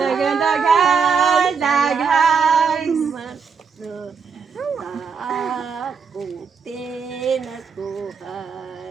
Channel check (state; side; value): quieter; left; 5.8 dB